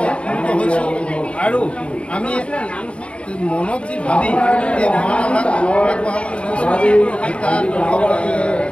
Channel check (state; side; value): late; right; 0.059 ms